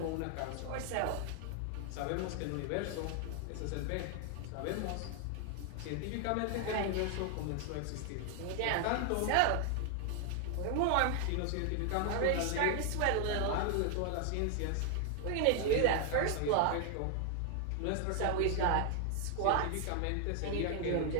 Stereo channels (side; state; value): both; different; correlation 0.00